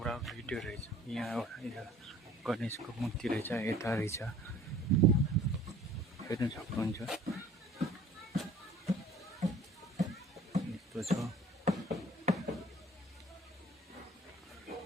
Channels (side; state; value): both; normal; correlation 0.51